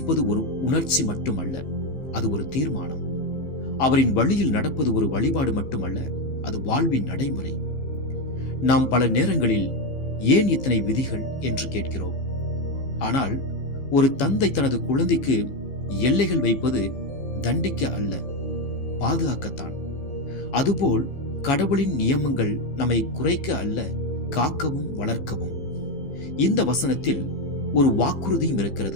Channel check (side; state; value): right; late; 15 ms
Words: ஒரு உணர்ச்சி மட்டுமல்ல, அது ஒரு தீர்மானம். அவரின் வழியில் நடப்பது ஒரு வழிபாடு மட்டுமல்ல, அது வாழ்வின் நடைமுறை. நாம் பல நேரங்களில் ஏன் இத்தனை விதிகள் என்று கேட்கிறோம். ஆனால் ஒரு தந்தை தனது குழந்தைக்கு எல்லைகள் வைப்பது தண்டிக்க அல்ல, பாதுகாக்கத்தான். அதுபோல் கடவுளின் நியமங்கள் நம்மை குறைக்க அல்ல, காக்கவும் வளர்க்கவும். இந்த வசனத்தில் ஒரு வாக்குறுதியும்